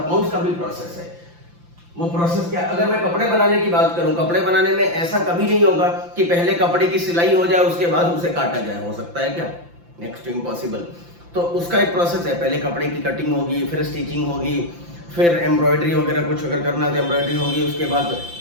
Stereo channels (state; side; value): late; left; 5.8 ms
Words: का भी प्रोसेस है। वो प्रोसेस क्या? अगर मैं कपड़े बनाने की बात करूं, कपड़े बनाने में ऐसा कभी नहीं होगा कि पहले कपड़े की सिलाई हो जाए उसके बाद उसे काटा जाए। हो सकता है क्या? Next to impossible. तो उसका एक प्रोसेस है, पहले कपड़े की कटिंग होगी, फिर स्टिचिंग होगी, फिर एम्ब्रॉयडरी वगैरह कुछ अगर करना तो एम्ब्रॉयडरी होगी, उसके बाद